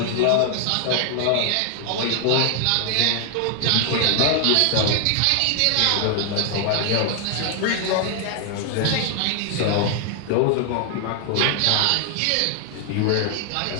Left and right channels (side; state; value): both; different; correlation 0.00